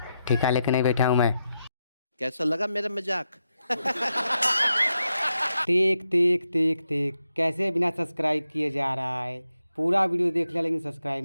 ठेका लेके नहीं बैठा हूँ मैं। कैसा लगा मेरा मजाक? देख देख देख देख कैसे बिना सब्सक्राइब किए जा रहा है। पूरा वीडियो देख लिया लेकिन सब्सक्राइब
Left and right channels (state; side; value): inverted; both; correlation -0.86